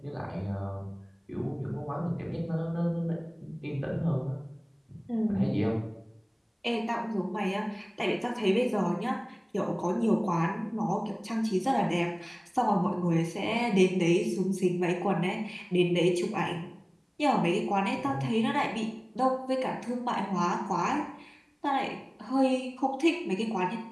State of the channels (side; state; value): both; identical; correlation 1.00